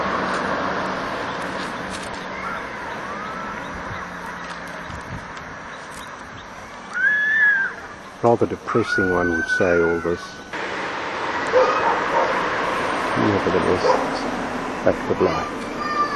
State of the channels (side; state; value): both; identical; correlation 1.00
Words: Rather depressing, one would say, all this. Nevertheless, it's fact of life.